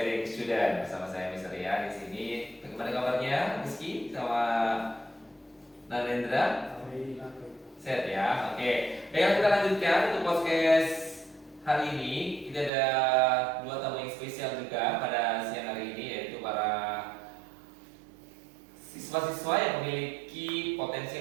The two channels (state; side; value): drops out; left; at 12.7 s